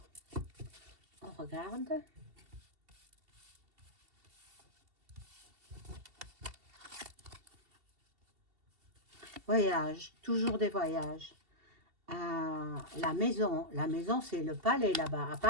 on regarde. Voyage, toujours des voyages. La maison c'est le palais là-bas, à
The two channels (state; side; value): late; left; 2.7 ms